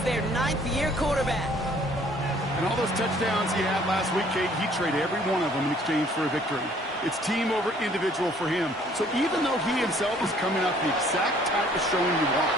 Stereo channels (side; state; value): both; normal; correlation 0.59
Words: their 9th-year quarterback. And all those touchdowns he had last week, Kate, he traded every one of them in exchange for a victory. It's team over individual for him. So even though he himself is coming out the exact type of showing you want,